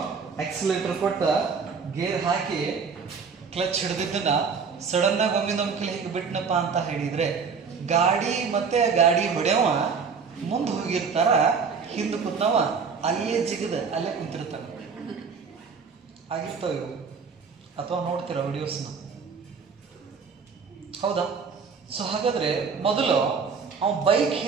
ಎಕ್ಸಿಲೇಟರ್ ಕೊಟ್ಟ ಗೇರ್ ಹಾಕಿ ಕ್ಲಚ್ ಹಿಡಿದಿದ್ದನ್ನ ಸಡನ್ ಆಗಿ ಒಮ್ಮೆ ನಮ್ಗೆ ಹೇಗೆ ಬಿಟ್ನಪ್ಪ ಅಂತ ಹೇಳಿದ್ರೆ ಗಾಡಿ ಮತ್ತೆ ಗಾಡಿ ಹೊಡೆಯವ ಮುಂದೆ ಹೋಗಿರ್ತಾರ, ಹಿಂದೆ ಕೂತವ ಅಲ್ಲೇ ಜಿಗದ ಅಲ್ಲೇ ಕುಂತಿರ್ತಾರ. ಆಗಿರ್ತಾವ ಇವು, ಅಥವಾ ನೋಡ್ತೀರ ವಿಡಿಯೋಸ್ನ, ಹೌದಾ? ಸೊ ಹಾಗಾದ್ರೆ ಮೊದಲು ಅವನ್ ಬೈಕ್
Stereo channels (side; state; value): left; quieter; 5.6 dB